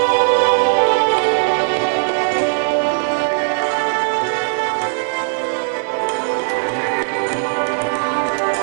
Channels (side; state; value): left; silent; digital silence